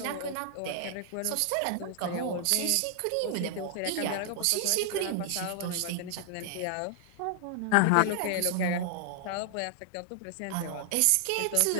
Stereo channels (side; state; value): both; different; correlation 0.00